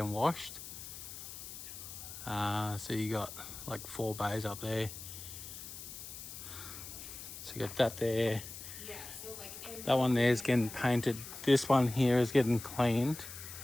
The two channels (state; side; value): noise; left; hiss, 11 dB below the sound